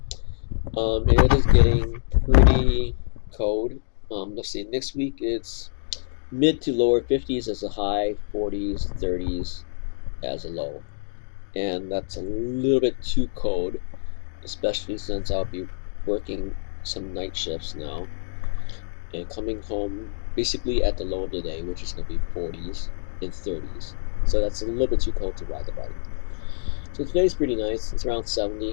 It is getting pretty cold. Let's see, next week it's mid to lower 50s as a high, 40s, 30s as a low. And that's a little bit too cold, especially since I'll be working some night shifts now and coming home basically at the low of the day, which is going to be 40s and 30s. So that's a little bit too cold to ride the bike. So today's pretty nice. It's around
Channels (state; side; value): silent; right; digital silence